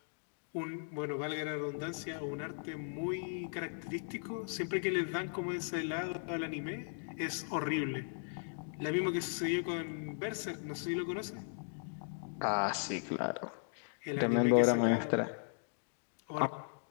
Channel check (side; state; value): right; silent; digital silence